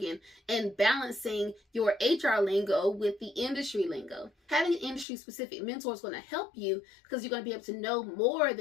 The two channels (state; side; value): drops out; right; at 5.1 s